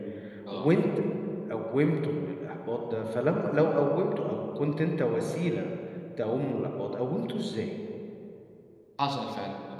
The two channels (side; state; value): both; identical; correlation 1.00